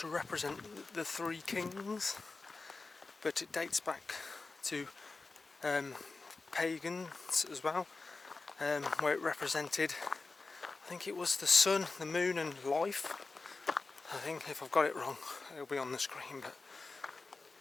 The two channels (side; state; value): right; quieter; 3.8 dB